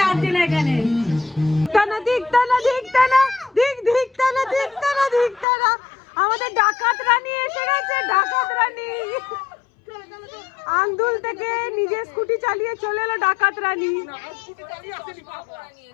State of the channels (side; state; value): right; drops out; at 5.5 s